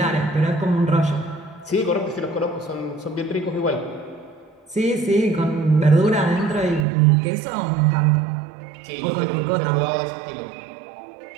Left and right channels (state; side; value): drops out; left; at 6.9 s